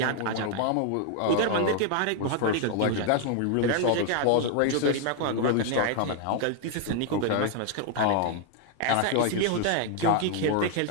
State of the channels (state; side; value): different; both; correlation 0.00